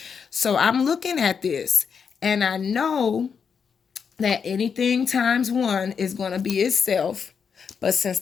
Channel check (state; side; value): quieter; right; 6.4 dB